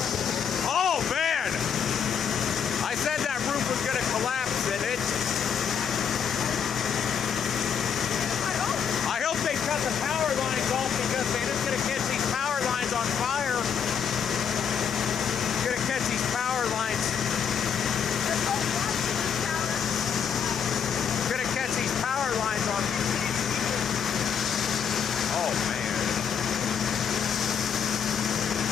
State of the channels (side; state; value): right; quieter; 7.4 dB